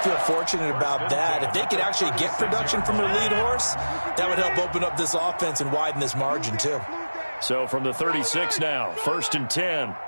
to feel fortunate about that. If they could actually get production from their lead horse, that would help open up this offense and widen this margin, too. So from the 36 now, 1st and 10.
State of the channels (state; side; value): inverted; both; correlation -1.00